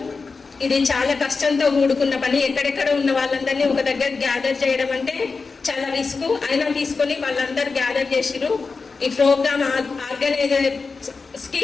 ఇది చాలా కష్టంతో కూడుకున్న పని. ఎక్కడెక్కడ ఉన్న వాళ్ళందరినీ ఒక దగ్గర గ్యాదర్ చేయడం అంటే చాలా రిస్క్. అయినా తీసుకొని వాళ్ళందరూ గ్యాదర్ చేసిరు. ఈ ప్రోగ్రామ్ ఆర్గనైజర్స్కి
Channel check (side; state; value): right; quieter; 4.5 dB